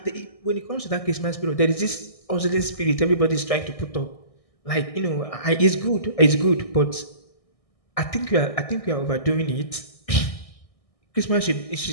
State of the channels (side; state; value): right; late; 1.6 ms